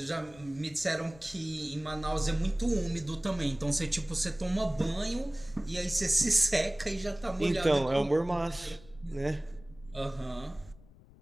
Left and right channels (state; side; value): noise; left; rumble, 23 dB below the sound